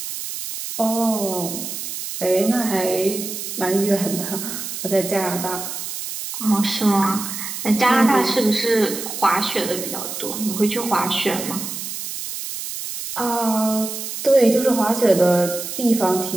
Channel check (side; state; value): right; noise; hiss, 7 dB below the sound